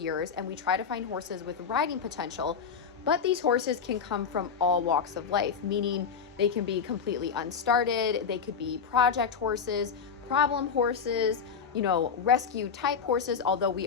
and we try to find horses with riding potential. But these horses can come from all walks of life, meaning they can be completely unstarted, they could be project horses, problem horses, rescue type horses, although we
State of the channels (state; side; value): quieter; right; 6.4 dB